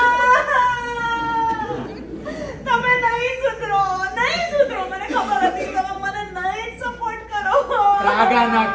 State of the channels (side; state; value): both; identical; correlation 1.00